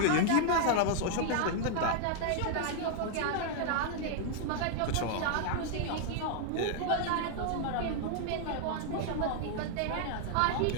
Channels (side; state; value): both; different; correlation 0.00